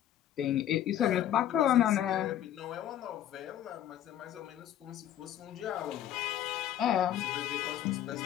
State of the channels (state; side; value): quieter; right; 11.2 dB